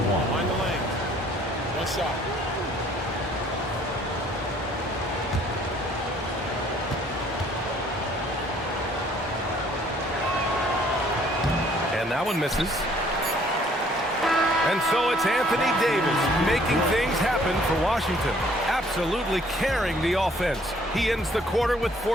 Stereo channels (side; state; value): both; normal; correlation 0.60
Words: Mind the lane. One shot. And that one misses. And so it's Anthony Davis making things happen for Washington. Absolutely carrying the offense. He ends the quarter with